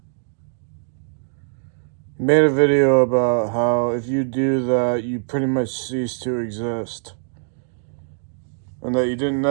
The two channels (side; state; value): left; silent; digital silence